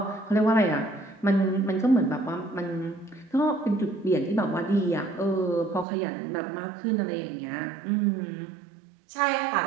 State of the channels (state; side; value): drops out; left; at 5.9 s